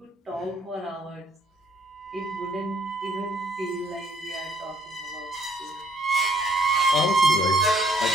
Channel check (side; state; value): both; normal; correlation 0.64